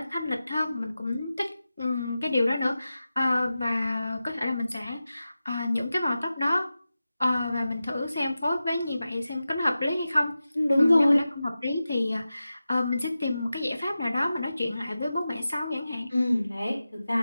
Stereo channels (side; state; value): both; inverted; correlation -0.93